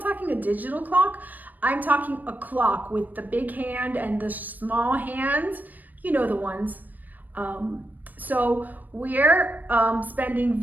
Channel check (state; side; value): late; left; 0.085 ms